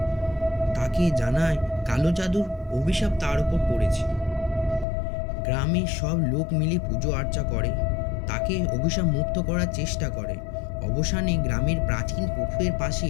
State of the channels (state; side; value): drops out; right; at 4.9 s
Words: তাকে জানায় কালো জাদুর অভিশাপ তার উপর পড়েছে। গ্রামের সব লোক মিলে পুজো আর্চা করে, তাকে অভিশাপ মুক্ত করার চেষ্টা করে। অবসানে গ্রামের প্রাচীন পুকুরের পাশে